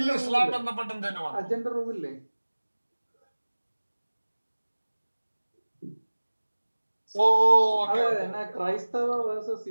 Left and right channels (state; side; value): inverted; both; correlation -1.00